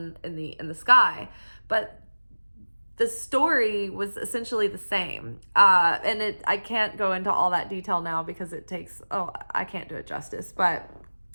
in the sky. But the story was essentially the same. And I can't go into all that detail now because I can't do it justice, but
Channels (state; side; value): inverted; both; correlation -1.00